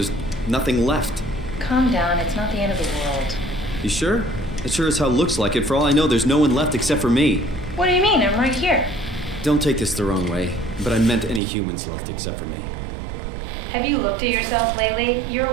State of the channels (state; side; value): drops out; left; at 11.4 s